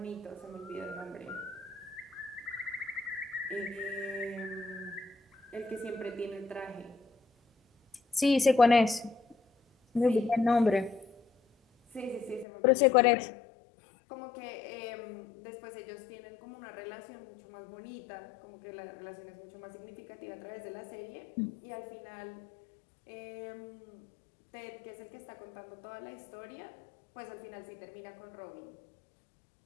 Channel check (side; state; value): right; drops out; at 12.5 s